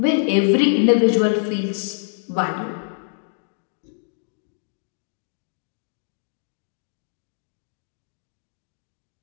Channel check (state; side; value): silent; right; digital silence